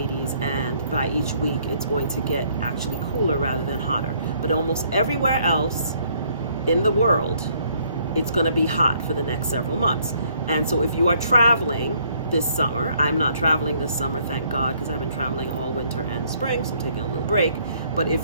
and by each week it's going to get actually cooler rather than hotter. But almost everywhere else in the world, it's going to be hot for the next several months. And so if you are traveling this summer, I'm not traveling this summer, thank God, because I've been traveling all winter and spring, so I'm taking a little break. But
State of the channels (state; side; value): inverted; both; correlation -0.65